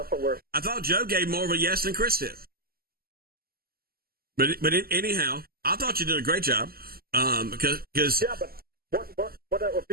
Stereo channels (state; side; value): late; left; 0.44 ms